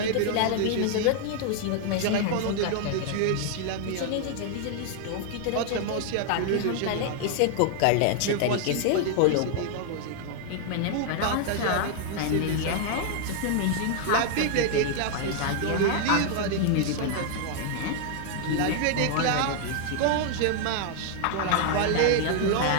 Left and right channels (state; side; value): different; both; correlation 0.00